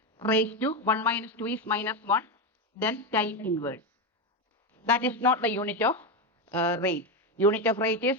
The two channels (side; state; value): both; normal; correlation 0.12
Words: raised to 1 minus 2 is minus 1. Then time inverse. That is not the unit of rate. Unit of rate is